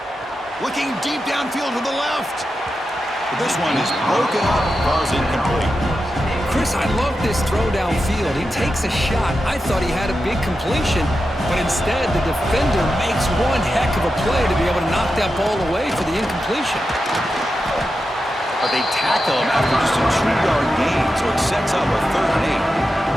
Looking deep downfield to the left. But this one is broken up, falls incomplete. Chris, I love this throw downfield. He takes a shot. I thought he had a big completion, but instead the defender makes one heck of a play to be able to knock that ball away for the incompletion. But they tackle him after just a 2-yard gain, so it sets up a 3rd and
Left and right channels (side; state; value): both; normal; correlation 0.89